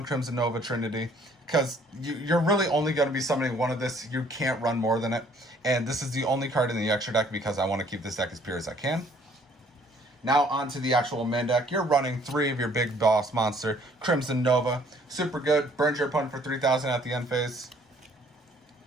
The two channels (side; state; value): both; normal; correlation 0.60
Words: Crimson Nova Trinity, because you're really only going to be summoning one of this. You can't run more than it, and this is the only card in the extra deck because I want to keep this deck as pure as I can. Now onto the actual main deck. You're running 3 of your big boss monster, Crimson Nova. Super good. Burns your opponent for 3,000 at the end phase.